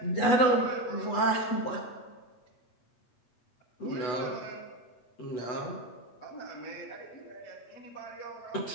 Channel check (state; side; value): late; right; 8.1 ms